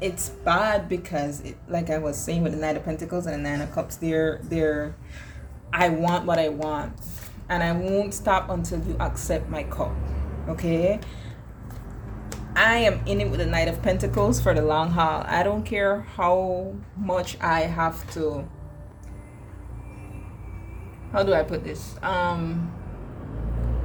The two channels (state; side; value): identical; both; correlation 1.00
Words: It's bad because, like I was saying with the Knight of Pentacles and the Nine of Cups, they're I want what I want, and I won't stop until you accept my cup. Okay, I am in it with the Knight of Pentacles for the long haul. I don't care how much I have to, how do I put this?